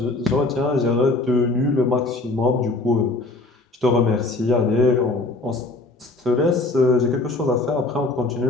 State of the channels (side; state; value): right; quieter; 3.0 dB